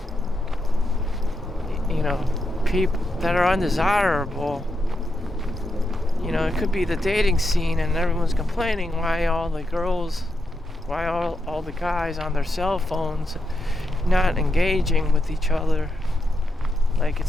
people that are undesirable. It could be the dating scene, and everyone's complaining why all the guys on their cell phones not engaging with each other like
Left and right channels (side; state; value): both; normal; correlation 0.85